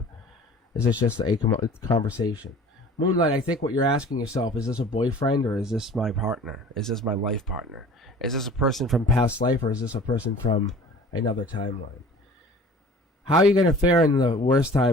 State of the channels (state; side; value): normal; both; correlation 0.45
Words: Is this just a conversation? Moonlight, I think what you're asking yourself, is this a boyfriend, or is this my partner? Is this my life partner? Is this a person from past life, or is this a person from another timeline? How are you going to fare in the worst